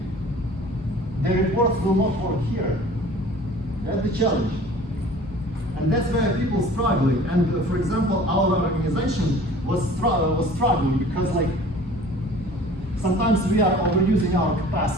The reports will not work here. That's the challenge. And that's where people struggling. And for example, our organization was struggling because sometimes we are overusing our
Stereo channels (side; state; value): both; normal; correlation 0.47